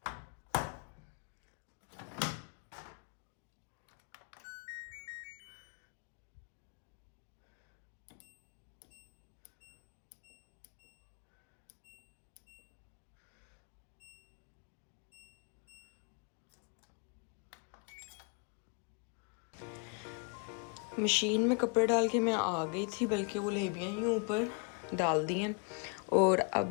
मशीन में कपड़े डाल के मैं आ गई थी, बल्कि वो लेबियाँ ही ऊपर डाल दी हैं। और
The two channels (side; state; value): right; quieter; 36.8 dB